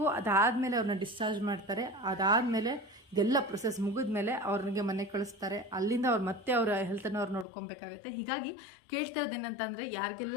ಅದಾದಮೇಲೆ ಅವ್ರನ್ನ ಡಿಸ್ಚಾರ್ಜ್ ಮಾಡ್ತಾರೆ. ಅದಾದಮೇಲೆ ಇದೆಲ್ಲ ಪ್ರೊಸೆಸ್ ಮುಗಿದ್ಮೇಲೆ ಅವ್ರಿಗೆ ಮನೆಗೆ ಕಳಿಸ್ತಾರೆ. ಅಲ್ಲಿಂದ ಅವ್ರು ಮತ್ತೆ ಅವರ ಹೆಲ್ತನ್ನು ಅವ್ರು ನೋಡ್ಕೊಬೇಕಾಗತ್ತೆ. ಹೀಗಾಗಿ ಕೇಳ್ತಾ ಇರೋದೇನಂತಂದರೆ,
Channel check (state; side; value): drops out; right; at 7.5 s